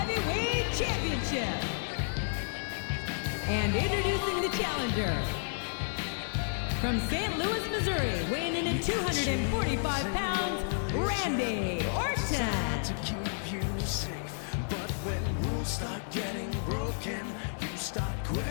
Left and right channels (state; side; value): silent; right; 56 dB below the other